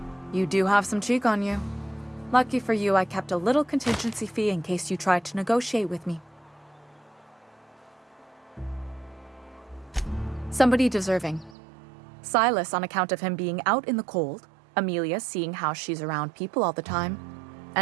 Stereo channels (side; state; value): left; drops out; at 11.6 s